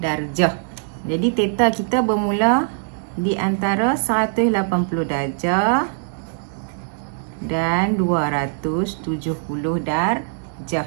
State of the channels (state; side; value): silent; left; digital silence